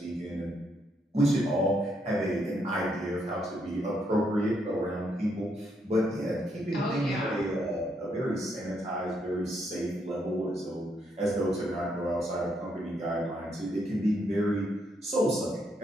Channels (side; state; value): both; normal; correlation 0.76